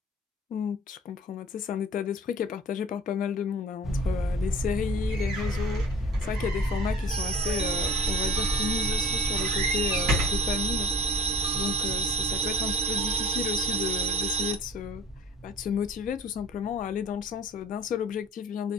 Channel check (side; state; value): both; normal; correlation 0.45